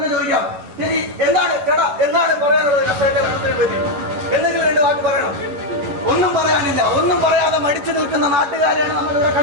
ചോദിക്കാം. ശരി, എന്താണ് ചേട്ടാ, എന്താണ് പറയാനുള്ളത് കർഷകന്റെ മരണത്തിനെ പറ്റി? എന്തെങ്കിലും രണ്ട് വാക്ക് പറയണം. ഒന്നും പറയാനില്ല. ഒന്നും പറയാതെ മടിച്ചു നിൽക്കുന്ന നാട്ടുകാരെയാണ് നമ്മൾ ഇവിടെ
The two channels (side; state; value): left; late; 10 ms